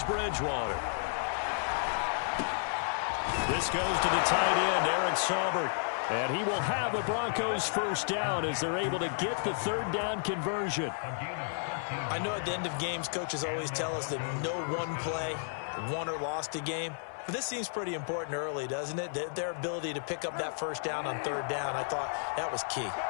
Bridgewater. This goes to the tight end, Eric Saubert. And he will have a Broncos first down as they're able to get the third down conversion. I know at the end of games, coaches always tell us that no one play won or lost a game. But this seems pretty important early, doesn't it? Their ability to pick up that first down on third down, I thought that was key.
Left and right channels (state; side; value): silent; right; 56 dB below the other